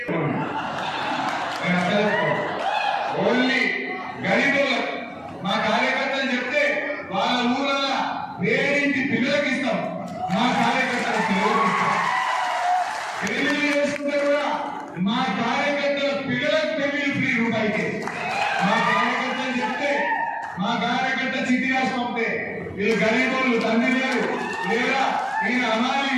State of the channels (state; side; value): identical; both; correlation 1.00